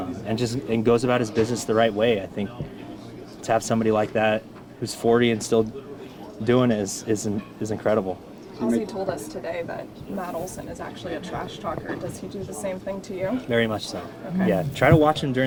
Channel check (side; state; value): both; identical; correlation 1.00